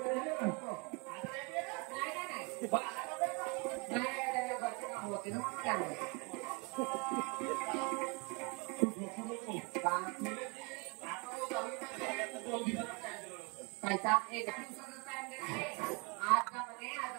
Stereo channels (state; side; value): quieter; left; 30.8 dB